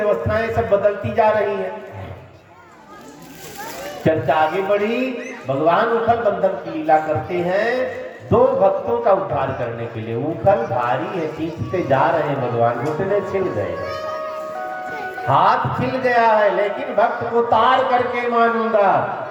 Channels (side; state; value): both; identical; correlation 1.00